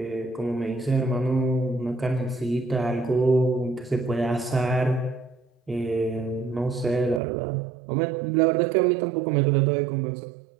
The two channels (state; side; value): drops out; left; at 7.2 s